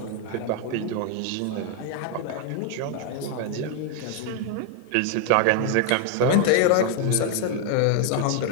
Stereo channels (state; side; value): different; both; correlation 0.00